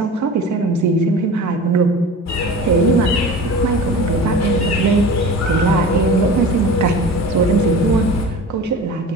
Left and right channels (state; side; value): normal; both; correlation 0.36